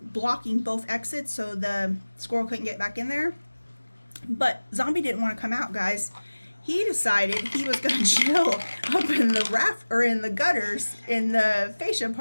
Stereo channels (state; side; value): inverted; both; correlation -1.00